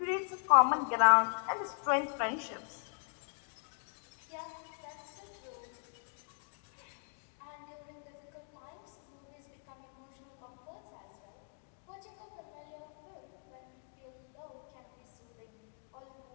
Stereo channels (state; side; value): silent; right; 52 dB below the other